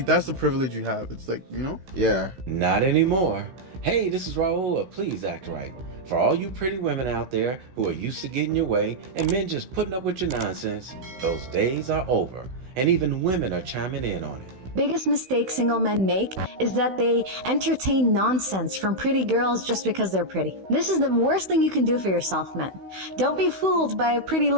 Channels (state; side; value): late; left; 16 ms